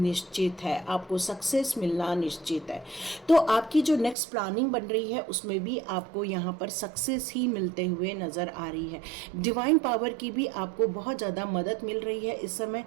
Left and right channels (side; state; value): left; drops out; at 4.2 s